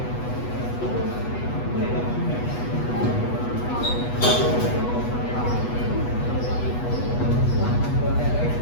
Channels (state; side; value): late; right; 8.2 ms